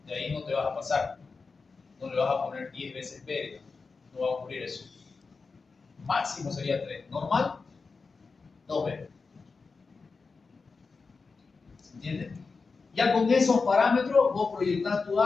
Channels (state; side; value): quieter; right; 4.5 dB